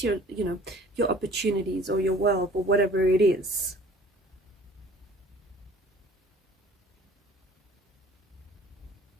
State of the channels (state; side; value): normal; both; correlation 0.51